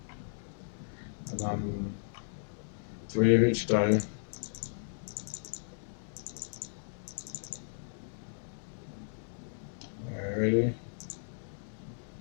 And then 3 of each dye. Alrighty.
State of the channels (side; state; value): right; silent; digital silence